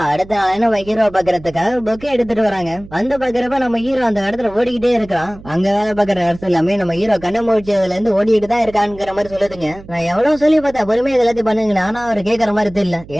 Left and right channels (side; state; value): right; noise; hum, 19 dB below the sound